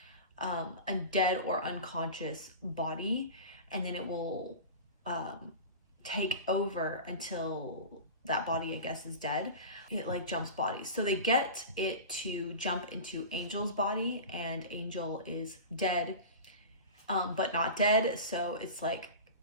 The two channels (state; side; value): inverted; both; correlation -0.31